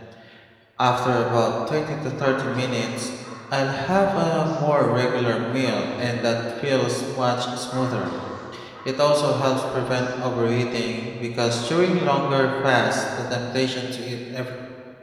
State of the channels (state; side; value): identical; both; correlation 1.00